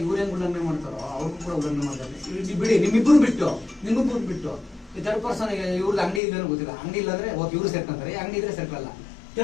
ಇವ್ರೇನು ಉಲ್ಲಂಘನೆ ಮಾಡ್ತಾರೋ ಅವ್ರಿಗೂ ಕೂಡ ಉಲ್ಲಂಘನೆ ಮಾಡ್ತಾರೆ. ಬಿಡಿ, ನಿಮ್ಮಿಬ್ಬರು ಬಿಟ್ಟು ಈ ಥರ್ಡ್ ಪರ್ಸನ್ ಇವ್ರದ್ದು ಅಂಗಡಿ ಇಲ್ಲೇನೋ ಗೊತ್ತಿಲ್ಲ. ಅಂಗಡಿ ಇಲ್ಲಾಂದ್ರೆ ಓಕೆ ಇವ್ರು ಸೇರ್ಕೊಂತಾರೆ, ಅಂಗಡಿ ಇದ್ರೆ ಸೇರ್ಕಲ್ಲ.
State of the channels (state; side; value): drops out; right; at 6.2 s